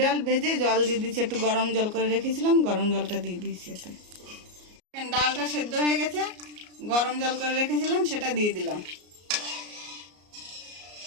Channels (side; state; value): left; late; 33 ms